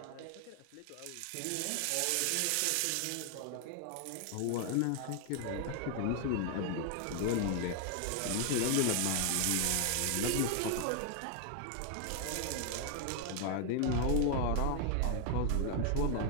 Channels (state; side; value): different; both; correlation 0.00